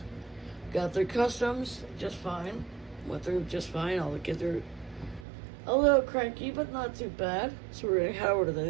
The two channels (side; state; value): left; drops out; at 5.2 s